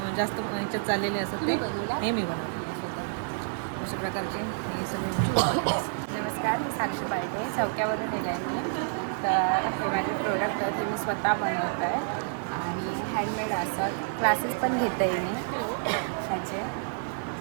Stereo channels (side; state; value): left; silent; digital silence